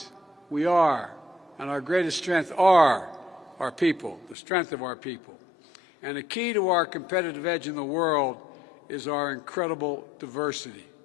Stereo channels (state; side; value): drops out; right; at 4.4 s